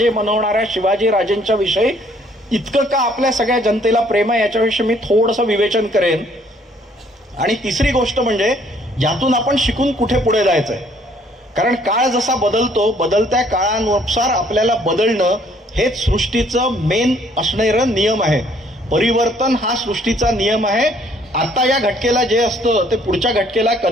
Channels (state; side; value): normal; both; correlation 0.62